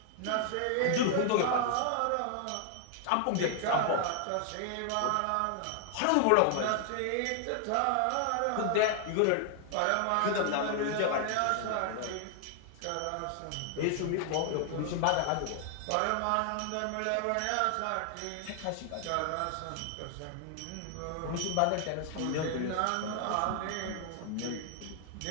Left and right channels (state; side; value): different; both; correlation 0.00